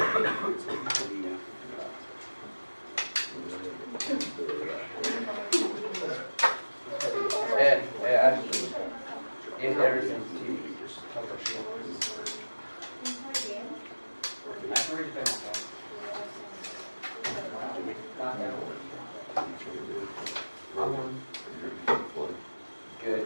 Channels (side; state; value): both; inverted; correlation -1.00